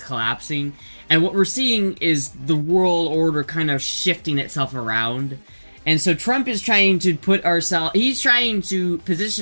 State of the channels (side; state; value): both; inverted; correlation -1.00